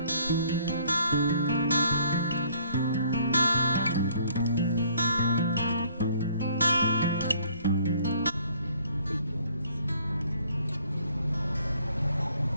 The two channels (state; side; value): inverted; both; correlation -0.61